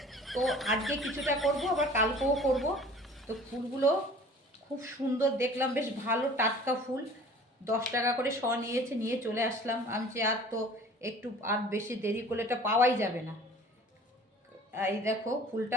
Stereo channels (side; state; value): both; normal; correlation 0.47